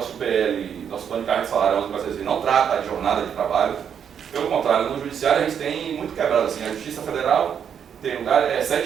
nosso plano de carreira de salário, não trata de jornada de trabalho. Pelo contrário, no judiciário a gente tem muito quebrado assim, a Justiça Federal tem lugar,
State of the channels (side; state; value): left; quieter; 8.0 dB